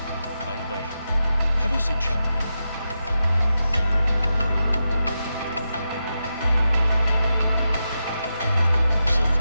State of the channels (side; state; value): both; inverted; correlation -0.88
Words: By the way, have you seen Chang Yu? She's